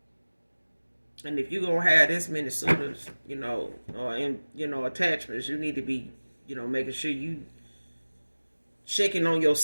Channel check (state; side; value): inverted; both; correlation -1.00